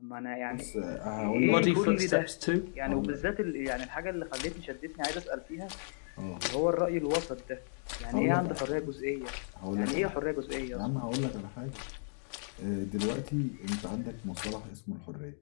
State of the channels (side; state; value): right; silent; digital silence